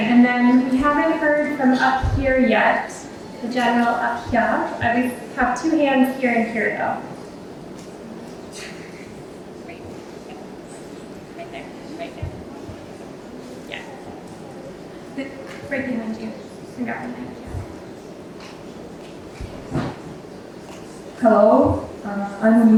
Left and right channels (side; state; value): both; identical; correlation 1.00